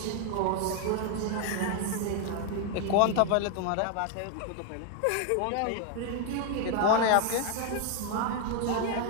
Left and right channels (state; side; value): different; both; correlation 0.00